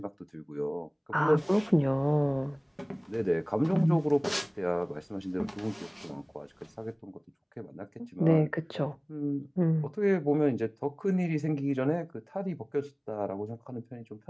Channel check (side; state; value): both; identical; correlation 1.00